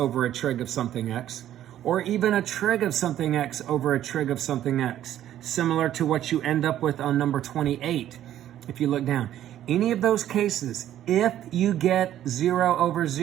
a trig of something x, or even a trig of something x over a trig of something x, similar to what you end up with on number 28. If you look down, any of those cases, if you get 0 over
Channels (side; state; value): left; quieter; 11.9 dB